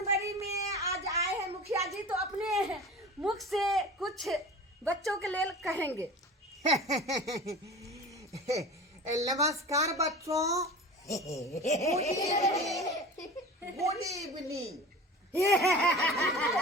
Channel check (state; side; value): normal; both; correlation 0.35